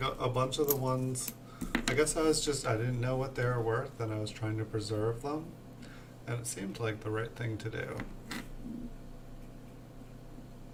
a bunch of the ones, I guess I didn't know what they were worth and I was trying to preserve them. And it seemed like the right thing to do.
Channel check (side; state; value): both; identical; correlation 1.00